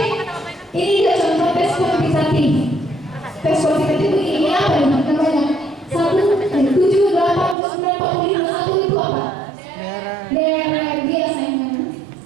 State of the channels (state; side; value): drops out; left; at 7.6 s